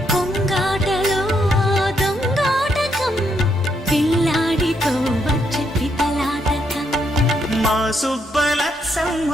కొంగాటలో దొంగాటకం, పిల్లాడితో వచ్చే పితలాటకం. మా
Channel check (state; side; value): normal; both; correlation 0.76